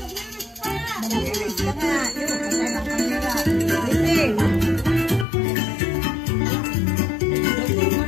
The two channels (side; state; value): right; drops out; at 5.2 s